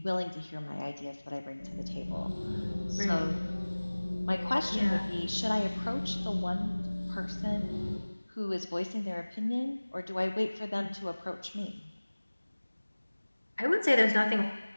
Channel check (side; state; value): both; inverted; correlation -1.00